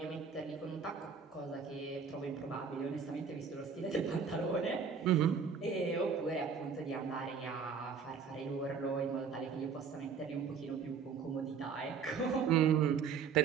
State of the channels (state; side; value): quieter; left; 6.1 dB